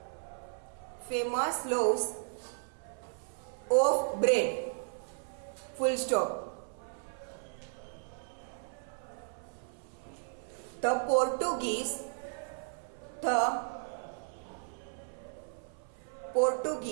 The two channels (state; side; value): silent; left; 54 dB below the other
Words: famous loaves of bread, full stop. The Portuguese